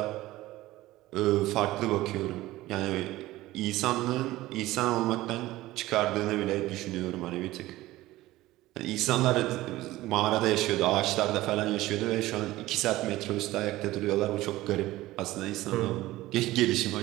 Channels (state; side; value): quieter; left; 17.2 dB